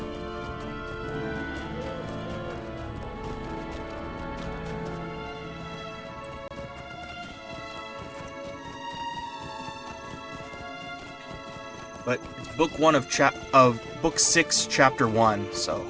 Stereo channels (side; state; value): both; identical; correlation 1.00